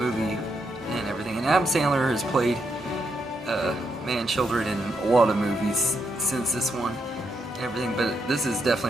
and everything. And Adam Sandler has played man children in a lot of movies since this one, and everything, but this is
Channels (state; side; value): normal; both; correlation 0.80